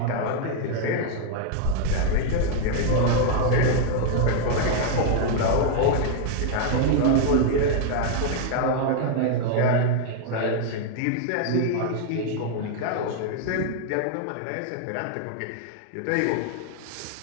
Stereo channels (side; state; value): both; different; correlation 0.00